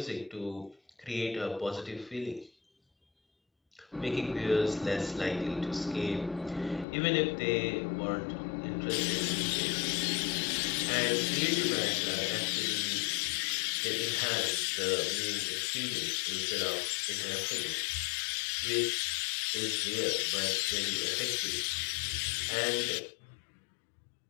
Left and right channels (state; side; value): drops out; right; at 6.9 s